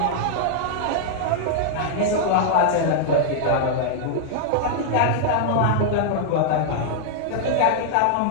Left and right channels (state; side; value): different; both; correlation -0.01